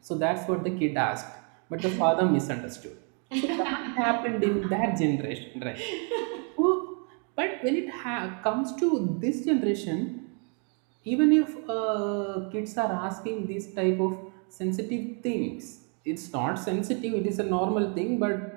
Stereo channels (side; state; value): left; quieter; 39.6 dB